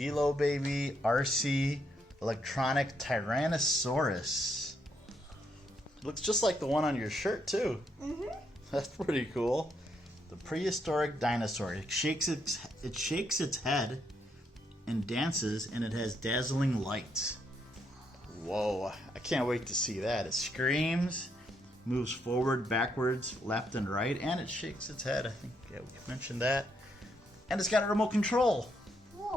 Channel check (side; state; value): both; normal; correlation 0.76